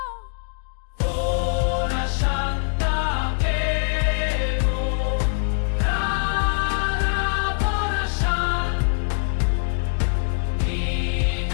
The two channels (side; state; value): right; silent; 61 dB below the other